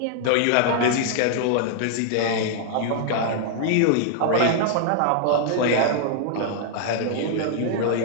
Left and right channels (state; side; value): different; both; correlation -0.01